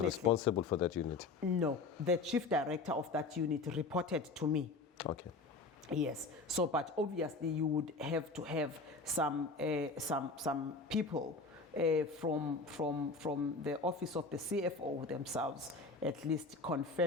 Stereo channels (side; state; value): right; quieter; 3.7 dB